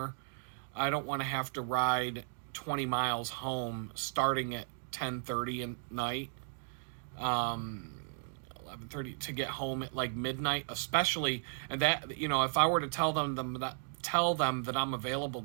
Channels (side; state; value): left; silent; digital silence